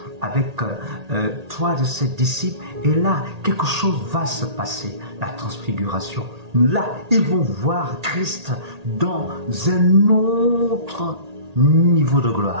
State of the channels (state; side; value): late; left; 1.8 ms